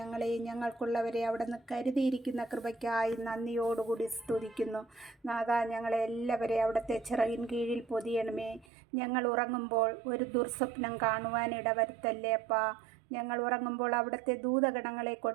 ഞങ്ങൾക്കുള്ളവരെ അവിടെ നിന്ന് കരുതിയിരിക്കുന്ന കൃപയ്ക്കായി നന്ദിയോടുകൂടി സ്തുതിക്കുന്നു. നാഥാ, ഞങ്ങളെ എല്ലാവരെയും അവിടുത്തെ ചിറകിൻ കീഴിൽ പൊതിയണമേ. ഞങ്ങൾ ഉറങ്ങുമ്പോൾ ഒരു ദുർസ്വപ്നം കാണുവാൻ ഇടവരുത്തല്ലേ അപ്പാ. ഞങ്ങൾ ഉറങ്ങുമ്പോൾ അവിടുത്തെ ദൂതഗണങ്ങളെ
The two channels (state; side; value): drops out; left; at 8.7 s